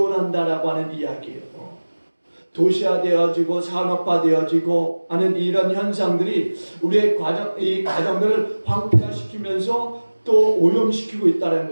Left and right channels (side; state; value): both; inverted; correlation -1.00